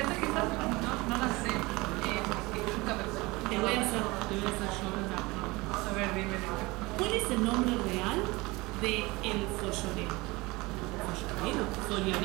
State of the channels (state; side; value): quieter; left; 22.9 dB